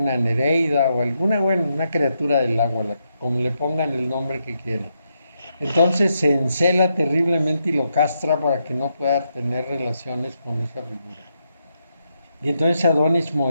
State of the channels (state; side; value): inverted; both; correlation -0.82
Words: Nereida o alguna, una criatura del agua, como le pongan el nombre que quieran. Entonces se encela terriblemente y lo castra para que no pueda tener relaciones con esa figura. Y entonces Adonis